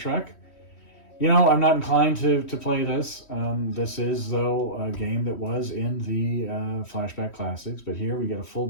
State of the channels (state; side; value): late; right; 3.1 ms